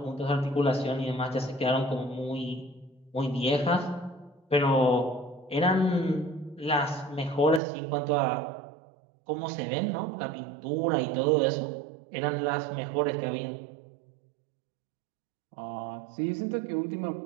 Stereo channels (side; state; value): left; drops out; at 7.6 s